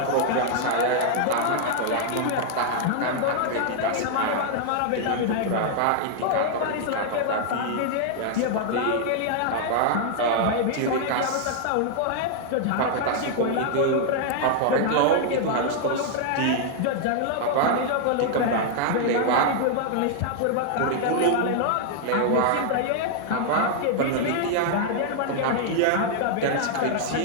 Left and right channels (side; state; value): both; different; correlation 0.00